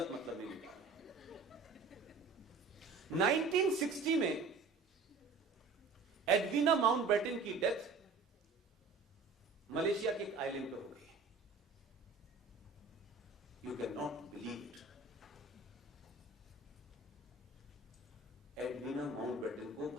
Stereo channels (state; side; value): quieter; left; 4.1 dB